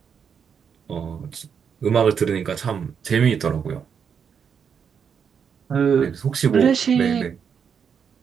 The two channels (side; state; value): left; quieter; 7.0 dB